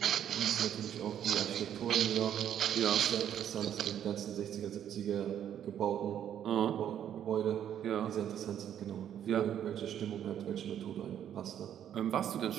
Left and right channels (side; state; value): left; quieter; 9.9 dB